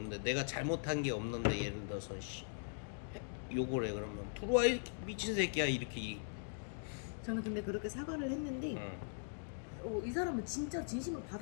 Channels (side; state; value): right; silent; digital silence